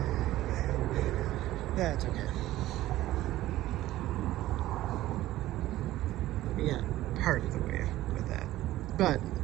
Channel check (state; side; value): quieter; left; 15.4 dB